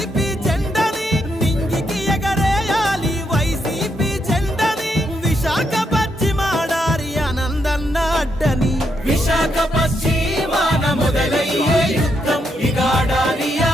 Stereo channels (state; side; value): normal; both; correlation 0.79